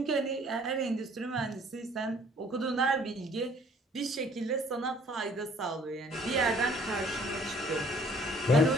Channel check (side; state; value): both; normal; correlation 0.58